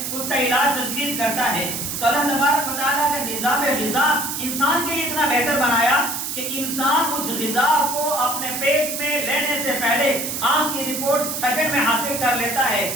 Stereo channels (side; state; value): right; noise; hiss, 4 dB below the sound